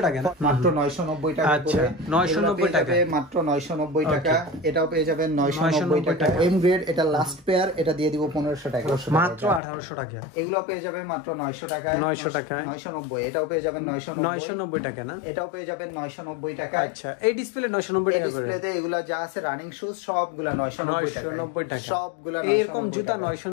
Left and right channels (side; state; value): right; drops out; at 9.6 s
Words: টাকা, মাত্র 990 টাকা। আচ্ছা 990 টাকা, মাত্র 990 টাকা। এটাও পেয়ে যাবেন 990 টাকা। এম গ্রেড, এটা লাস্ট পেয়ার, এটা দিয়ে দিব 1500 টাকা, মাত্র 1800 টাকা। এগুলো পেয়ে যাবেন মাত্র 900 টাকা, 900 টাকা, 990। এটাও পেয়ে যাবেন 990 টাকা না, এটাও পেয়ে যাবেন 990 টাকা। আচ্ছা এই ডিসপ্লে 990 টাকা করে। ডিসপ্লেতে এগুলা যা আছে রানিং শুজ সবগুলা 990 টাকা, সবগুলা এরকম জুতা